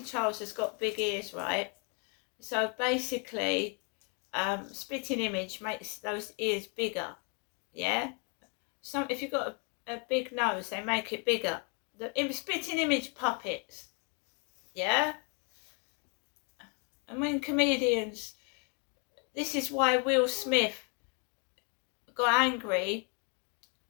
Charles has got big ears, right? So basically, Spitting Image makes those ears bigger. Yeah. If you've got a big nose, they make it bigger. The Spitting Image puppets. Yeah. And when comedians, this is why Will Smith got angry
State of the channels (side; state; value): right; quieter; 37.4 dB